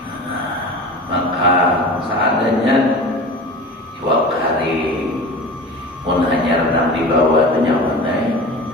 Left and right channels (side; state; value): both; normal; correlation 0.34